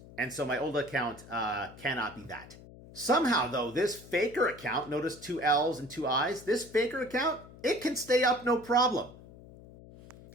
and so my old account cannot be that. Somehow, though, this faker account, notice 2 L's and 2 I's, this faker account, it can stay up no problem.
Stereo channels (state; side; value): noise; left; hum, 19 dB below the sound